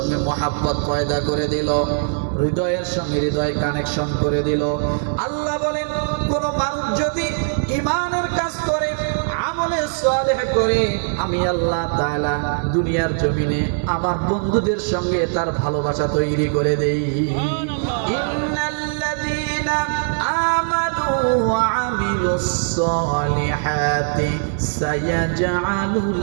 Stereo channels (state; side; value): silent; left; digital silence